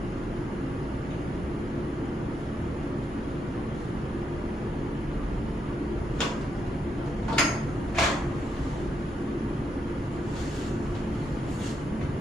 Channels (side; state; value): both; normal; correlation 0.81